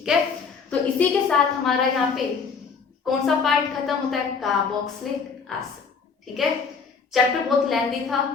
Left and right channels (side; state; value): right; quieter; 5.5 dB